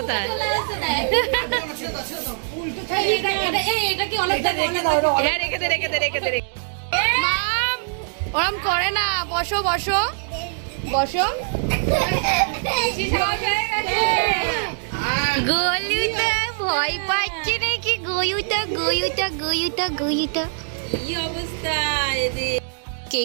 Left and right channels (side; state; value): left; silent; 64 dB below the other